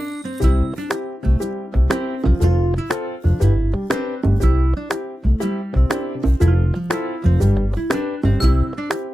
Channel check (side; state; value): both; normal; correlation 0.94